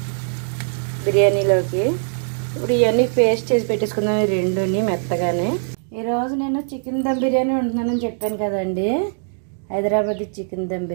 బిర్యానీలోకి. ఇప్పుడు ఇవన్నీ పేస్ట్ చేసి పెట్టేసుకుందాం ఈ రెండుని మెత్తగానే. ఈరోజు నేను చికెన్ దమ్ బిర్యానీ వండుతున్నానని చెప్పాను కదండి. హైదరాబాద్ చికెన్ దమ్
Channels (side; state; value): left; silent; digital silence